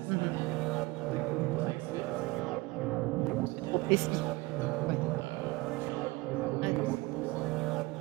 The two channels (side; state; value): left; quieter; 22.4 dB